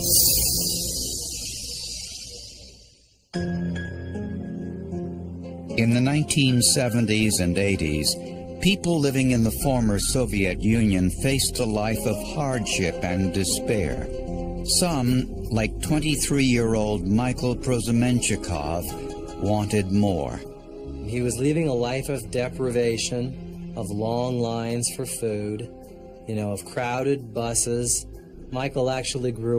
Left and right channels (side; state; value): both; identical; correlation 1.00